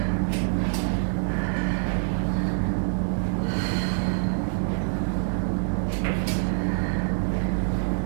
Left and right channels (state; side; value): silent; left; digital silence